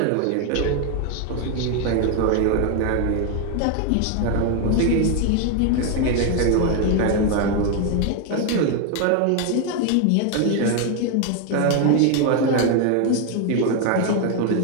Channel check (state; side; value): different; both; correlation 0.01